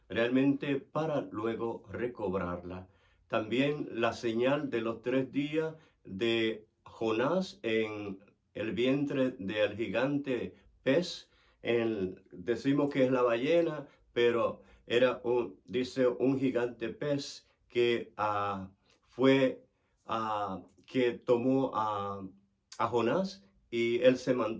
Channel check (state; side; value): identical; both; correlation 1.00